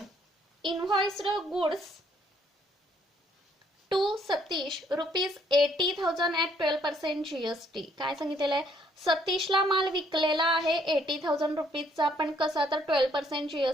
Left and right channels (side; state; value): both; normal; correlation 0.67